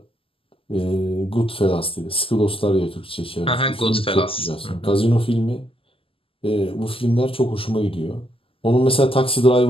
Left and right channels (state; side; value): late; right; 0.26 ms